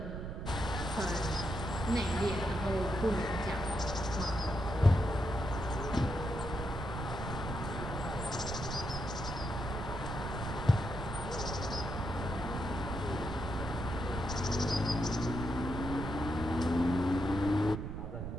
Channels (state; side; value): noise; right; rumble, 5 dB below the sound